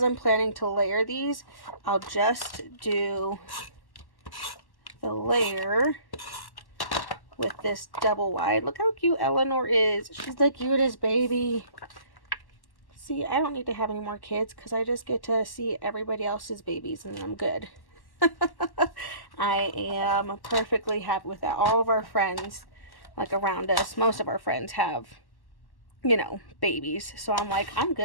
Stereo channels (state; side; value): late; right; 1.1 ms